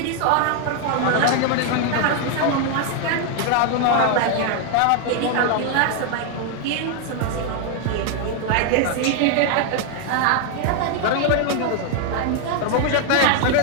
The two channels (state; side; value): different; both; correlation 0.00